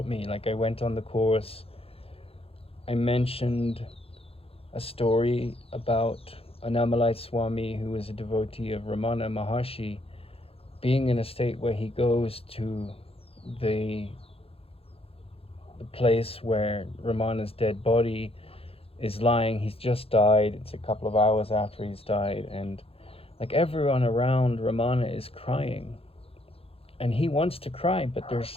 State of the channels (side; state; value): right; late; 0.28 ms